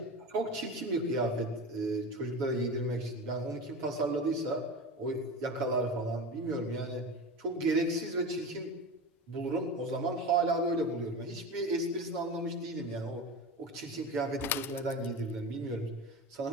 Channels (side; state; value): both; normal; correlation 0.28